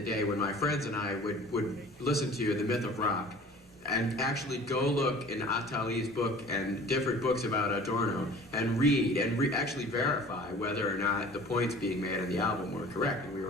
day when my friends and I would listen to The Myth of Rock and actually go look in Attali's book and different books about Adorno and read and actually verify whether or not the points being made on the album were correct, and we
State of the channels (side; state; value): both; normal; correlation 0.45